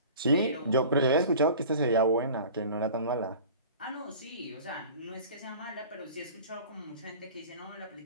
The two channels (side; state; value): both; inverted; correlation -0.42